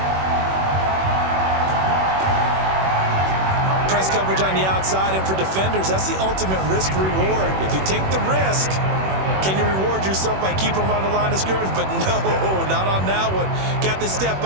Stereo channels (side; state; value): left; late; 21 ms